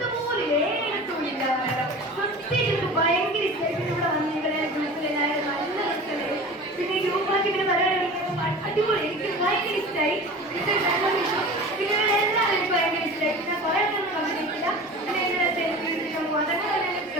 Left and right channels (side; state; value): both; normal; correlation 0.36